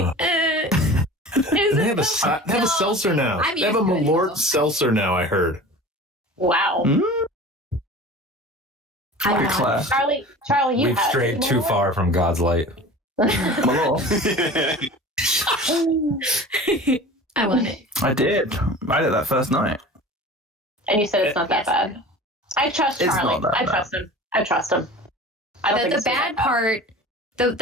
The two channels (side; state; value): both; normal; correlation 0.39